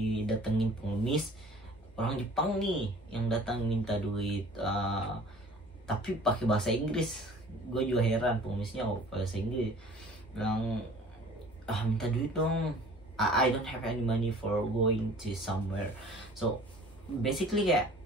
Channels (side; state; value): both; normal; correlation 0.48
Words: pengemis orang Jepang nih yang datang minta duit, tapi pakai bahasa Inggris. Gue juga heran, pengemisnya bahasa Inggris, bilang minta duit dong, I don't have any money for going to somewhere. So basically kayak